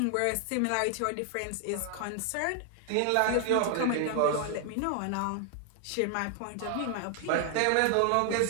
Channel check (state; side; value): different; both; correlation 0.00